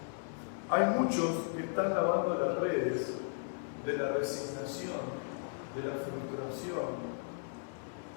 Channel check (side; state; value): right; silent; digital silence